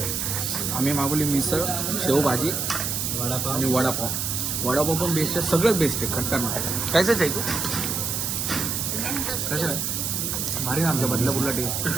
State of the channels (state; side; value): noise; right; hiss, 1 dB below the sound